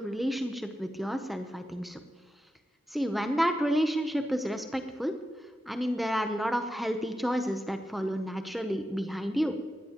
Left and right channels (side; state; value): both; normal; correlation 0.89